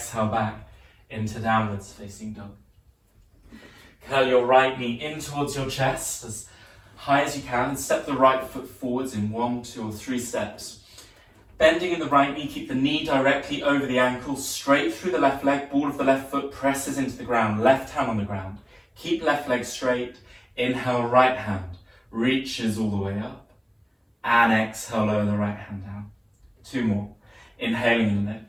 back into downwards facing dog. Curl your right knee in towards your chest as high as you can and step the right foot forwards in 1, 2 or 3 steps. Bending in the right knee, keep the knee directly over the ankle, straight through the left leg, ball of the left foot presses into the ground, left hand on the ground. Keep left leg straight, inhale right hand, reaches all the way up, and exhale, lower the right hand down. 2 more, inhaling and lift,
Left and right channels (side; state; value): both; identical; correlation 1.00